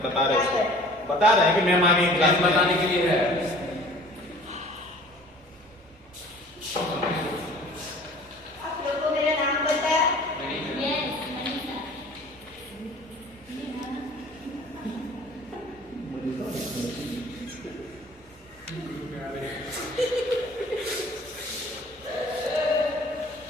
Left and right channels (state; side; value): normal; both; correlation 0.48